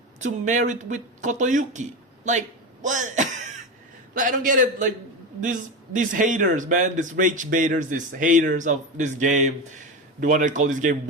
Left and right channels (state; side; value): normal; both; correlation 0.19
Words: to marry with Kotoyuki. Like, what? Like, I don't get it. Like, these haters, man, these rage baiters, these haters of this game, the one that call this game